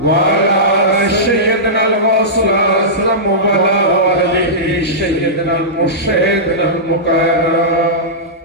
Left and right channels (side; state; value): both; normal; correlation -0.15